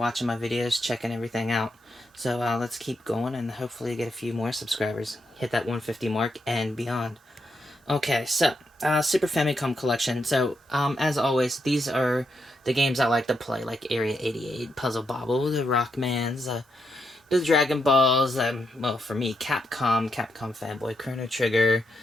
my videos, checking everything out. So let's keep going and hopefully get a few more subscribers. Hit that 150 mark and beyond. Okay, so Super Famicom Collection. So as always, these are the games I like to play, like Area 88, Puzzle Bobble, the Rockmans, the Dragon Balls. Well, for me, Capcom Fanboy, Chrono Trigger,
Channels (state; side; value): normal; both; correlation 0.81